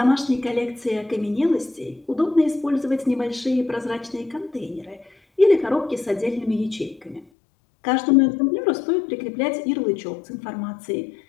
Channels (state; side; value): drops out; right; at 7.2 s